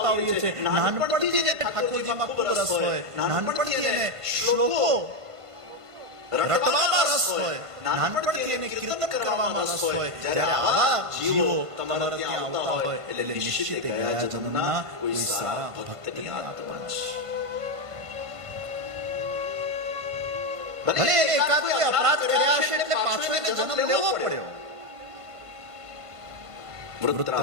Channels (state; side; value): late; left; 1.5 ms